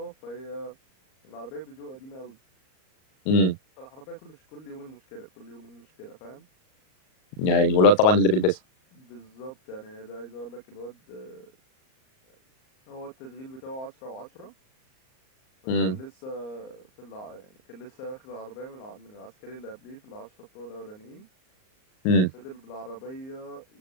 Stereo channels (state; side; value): late; right; 38 ms